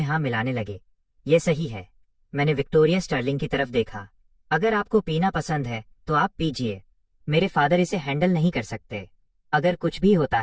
लगे। ये सही है। मैंने विक्टोरिया स्टर्लिंग की तरफ देखा। अगर आपको पीना पसंद है तो आप पीजिए। मेरे फादर इसे हैंडल नहीं कर सकते। अगर कुछ भी होता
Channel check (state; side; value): identical; both; correlation 1.00